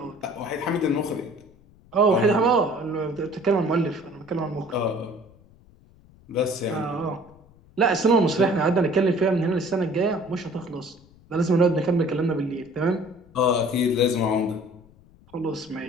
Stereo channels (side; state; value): left; noise; rumble, 27 dB below the sound